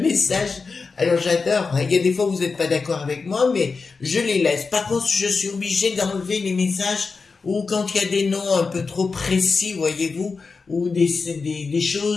alors j'adore, il y a des fois où vous n'êtes pas d'accord avec moi, mais je les laisse. Par contre, je suis obligée d'enlever les messages où quand il y a des noms un peu trop précis, voyez-vous, ou des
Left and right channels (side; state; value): right; quieter; 4.6 dB